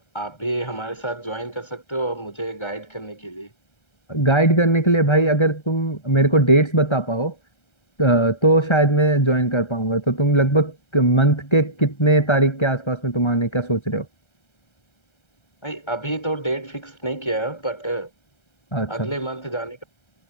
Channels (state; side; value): late; right; 1.3 ms